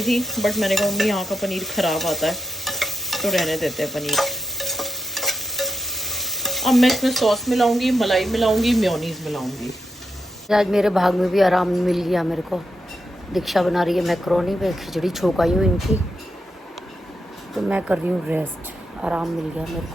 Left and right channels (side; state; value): both; normal; correlation 0.85